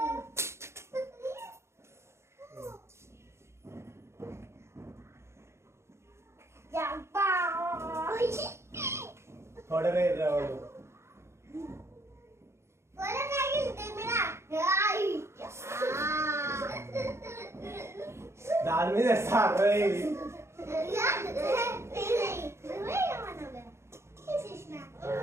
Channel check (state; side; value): late; left; 0.13 ms